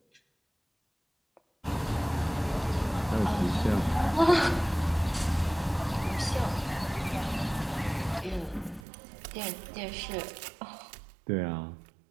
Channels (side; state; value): left; drops out; at 8.8 s